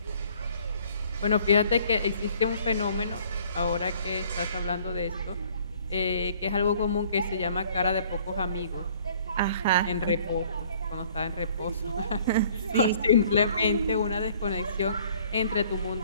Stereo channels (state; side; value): inverted; both; correlation -0.57